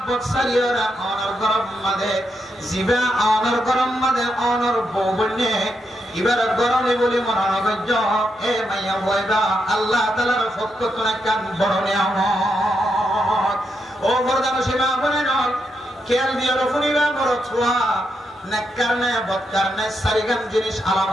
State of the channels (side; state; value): both; normal; correlation 0.82